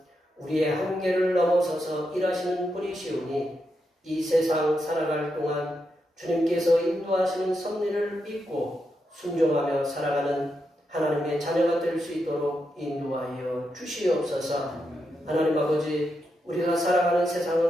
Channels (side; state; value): both; normal; correlation 0.84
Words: 우리의 한계를 넘어서서 일하시는 분이시오니 이 세상 살아갈 동안 주님께서 인도하시는 섭리를 믿고 순종하며 살아가는 하나님의 자녀가 될 수 있도록 인도하여 주시옵소서. 하나님 아버지, 우리가 살아가는